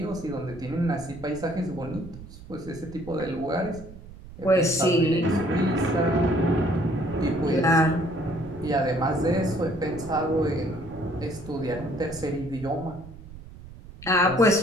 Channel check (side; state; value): right; noise; rumble, 16 dB below the sound